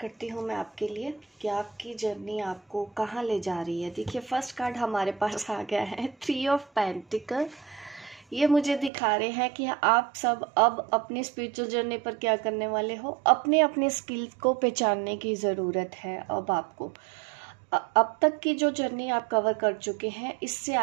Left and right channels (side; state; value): left; drops out; at 8.9 s